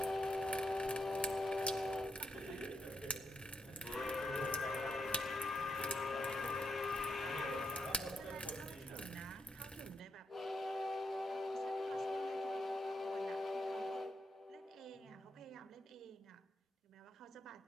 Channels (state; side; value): normal; both; correlation 0.82